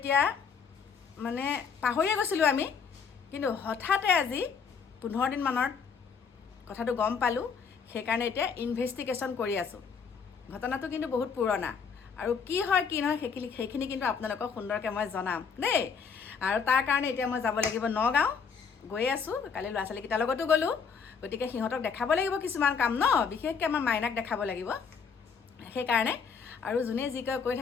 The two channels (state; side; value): quieter; right; 6.0 dB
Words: মানে পাহৰিয়ে গৈছিলোঁ আমি, কিন্তু হঠাতে আজি 15 দিনমানৰ কথাটো গম পালোঁ। সেইকাৰণে এতিয়া ইনভেষ্টিগেশ্যন কৰি আছোঁ। ঘটনাটো কিন্তু বহুত পুৰণা, আৰু কি হয় কি নহয় সেইখিনি কিন্তু আপোনালোকক সুন্দৰকৈ মই জনাম দেই। আৰু তাৰ কাৰণে এতিয়া মই যাব লাগিব নগাঁও, গৈ আছোঁ। কালি ল'ৰা ছোৱালীকেইটাৰ লগতো গ'লোঁ। গতিকে সিহঁতক দেখাব লাগিব কিছুমান কাম ন, বিশেষকৈ আমাৰ মাইনাক দেখাব লাগিব। সেইকাৰণে আৰু যোনে যি কয় কৈ